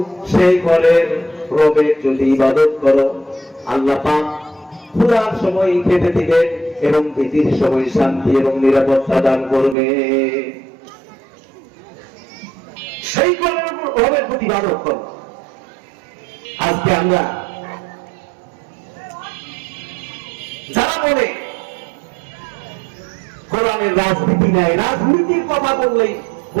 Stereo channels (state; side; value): drops out; left; at 9.8 s